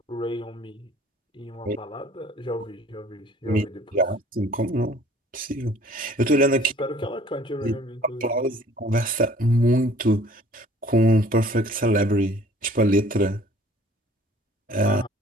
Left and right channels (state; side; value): normal; both; correlation 0.53